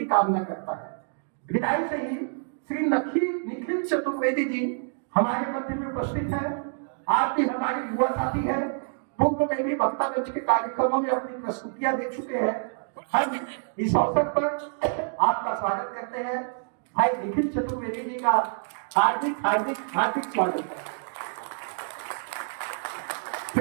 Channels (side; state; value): left; silent; digital silence